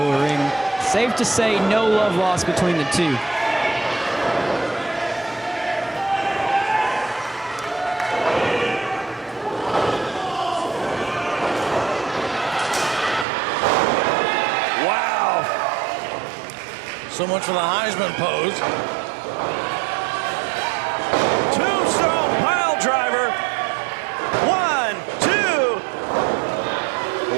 of the ring. Safe to say, no love lost between the two. Wow. So much for the Heisman pose. Tombstone pile driver. 1, 2.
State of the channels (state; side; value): drops out; left; at 13.2 s